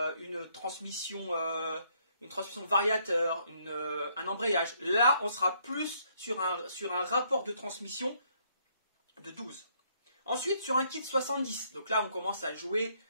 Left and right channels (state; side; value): inverted; both; correlation -0.69